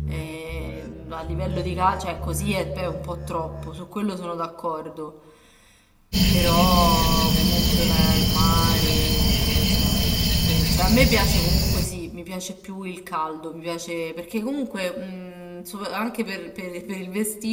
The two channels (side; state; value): both; identical; correlation 1.00